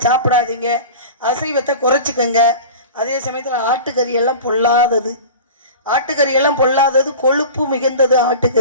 சாப்பிடாதீங்க, அசைவத்தை குறைச்சிக்கங்க. அதே சமயத்தில் ஆட்டுக்கறி எல்லாம் பொல்லாதது, ஆட்டுக்கறி எல்லாம் பொல்லாதது, கொழுப்பு மிகுந்தது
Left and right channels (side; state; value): both; inverted; correlation -0.36